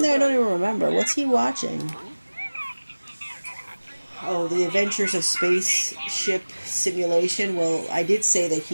there? I don't even remember. What's he watching? Oh, The Adventures of Spaceship Simulation. Well, I did say that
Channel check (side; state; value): both; inverted; correlation -1.00